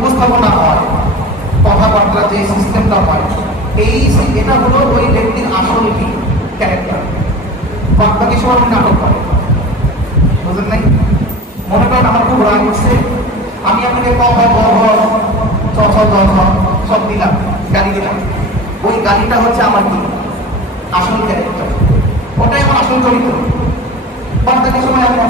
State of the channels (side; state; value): both; normal; correlation 0.35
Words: হয় কথাবার্তা যে সিস্টেমটা হয় এটা হলো ওই ব্যক্তির আসল কি ক্যারেক্টার। বাকি সময় নাটক করে, বুঝলেন নাই? মনে করেন আমার খুব রাগ উঠছে, আমি আপনাকে সব দিলাম, গাড়ি দিলাম, ওই গাড়িটা হচ্ছে আমার কি আসল ক্যারেক্টার, ওটাই আমার আসল চরিত্র। বাকি সময় আমি